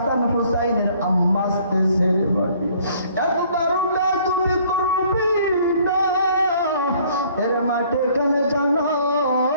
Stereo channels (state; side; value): inverted; both; correlation -0.59